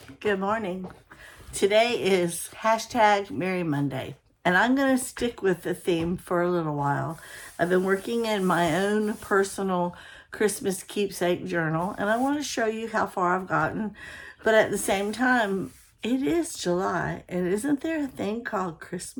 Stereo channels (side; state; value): both; identical; correlation 1.00